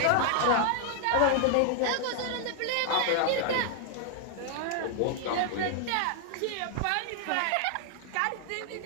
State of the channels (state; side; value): different; both; correlation 0.00